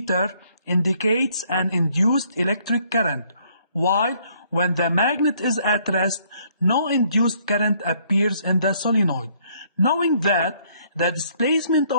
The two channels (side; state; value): both; inverted; correlation -0.65